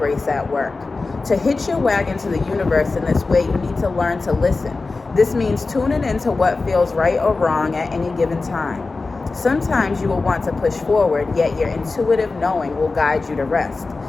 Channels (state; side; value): quieter; right; 3.8 dB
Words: at work. To hitch your wagon to the universe in this way, you need to learn to listen. This means tuning into what feels right or wrong at any given time. Sometimes you will want to push forward, yet your intuitive knowing will guide you to rest.